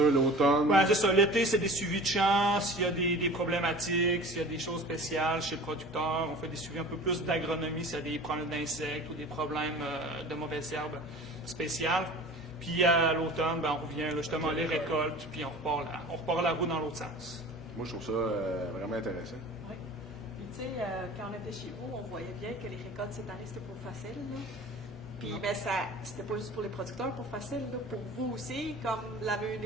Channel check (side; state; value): left; noise; hum, 25 dB below the sound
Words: Oui, c'est ça. L'été, c'est des suivis de champs. S'il y a des problématiques, s'il y a des choses spéciales chez le producteur, on fait des suivis un peu plus d'agronomie s'il y a des problèmes d'insectes ou des problèmes de mauvaises herbes spéciales. Puis à l'automne, on revient là, justement les récoltes, puis on repart la roue dans l'autre sens. Moi, je trouve ça vraiment intéressant. Oui. Puis tu sais, quand on était chez vous, on voyait bien que les récoltes cette année, c'était pas facile. Là. Puis mais c'était pas juste pour les producteurs pour facile, là, pour vous aussi, comme la